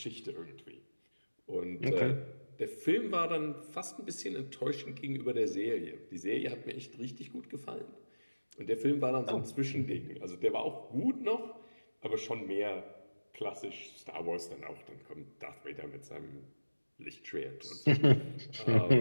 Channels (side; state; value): both; inverted; correlation -1.00